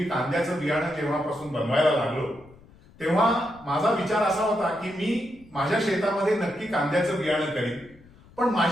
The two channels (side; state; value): left; noise; rumble, 25 dB below the sound